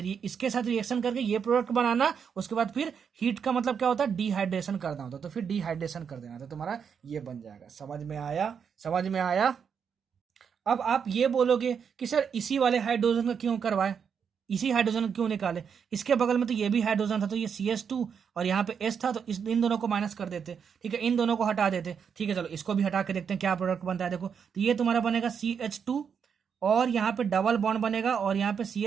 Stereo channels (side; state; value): left; quieter; 7.0 dB